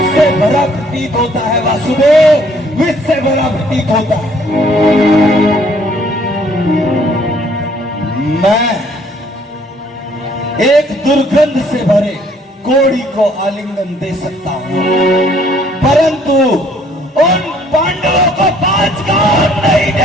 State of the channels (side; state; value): both; normal; correlation 0.62